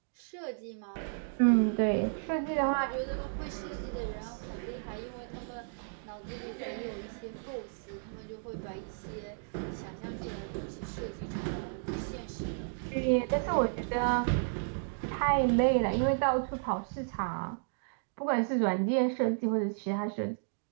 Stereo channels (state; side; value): silent; left; digital silence